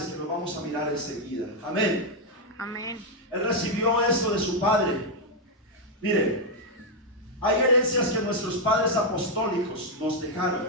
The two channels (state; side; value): normal; both; correlation 0.00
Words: que lo vamos a mirar enseguida. Amén. Amén. Él recibió esto de su padre. Mire, hay herencias que nuestros padres apostólicos nos dejaron.